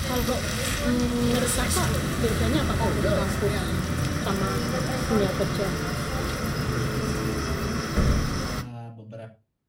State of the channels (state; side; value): identical; both; correlation 1.00